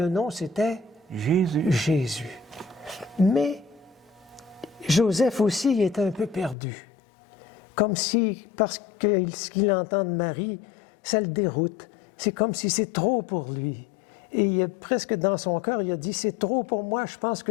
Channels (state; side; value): drops out; right; at 6.6 s